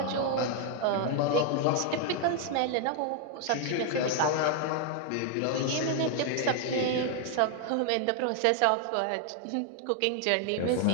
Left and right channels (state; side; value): different; both; correlation 0.00